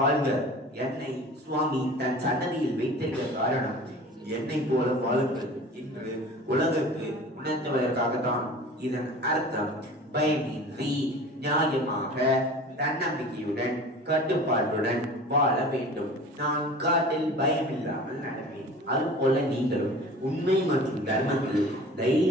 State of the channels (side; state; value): both; normal; correlation 0.40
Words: என்னை சுவாமி தன் சன்னதியில் வைத்திருக்க காரணம் என்னை போல வாழுங்கள் என்று உலகுக்கு உணர்த்துவதற்காகத்தான். இதன் அர்த்தம் பயமின்றி நியாயமாக தன்னம்பிக்கையுடன் கட்டுப்பாட்டுடன் வாழ வேண்டும். நான் காட்டில் பயமில்லாமல் நடப்பேன். அதுபோல நீங்களும் உண்மை மற்றும் தர்மத்தில்